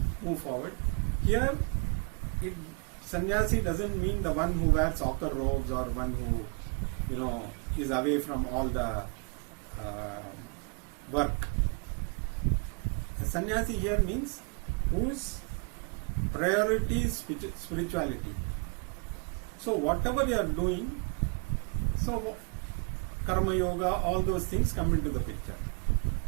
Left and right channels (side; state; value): left; quieter; 36.8 dB